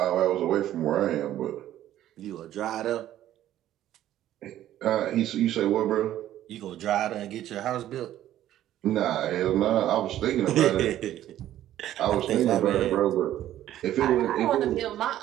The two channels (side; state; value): left; quieter; 12.7 dB